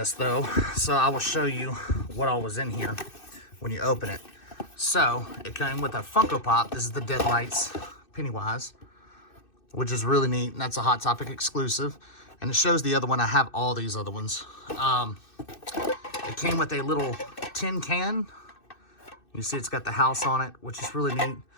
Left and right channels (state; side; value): late; right; 2.6 ms